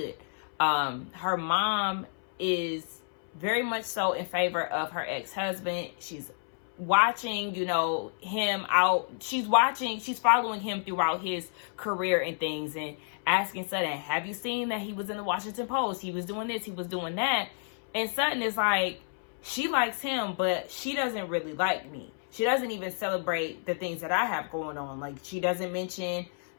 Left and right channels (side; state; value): right; silent; 58 dB below the other